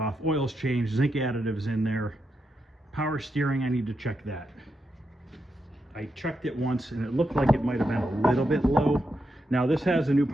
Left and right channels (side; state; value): both; normal; correlation 0.84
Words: oil's changed, zinc additives in there. Power steering, I need to check that. I checked it once and it looked like it might have been a little bit low. Now this has a new